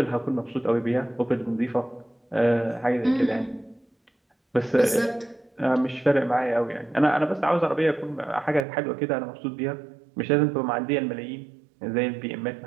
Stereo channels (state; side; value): drops out; left; at 8.7 s